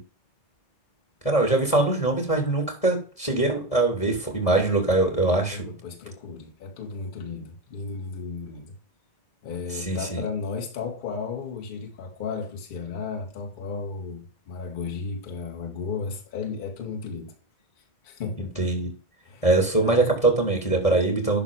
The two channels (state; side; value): late; right; 1.6 ms